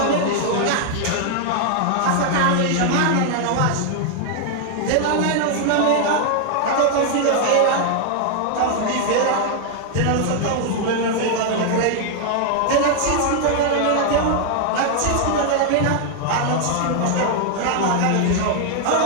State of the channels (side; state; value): both; different; correlation 0.00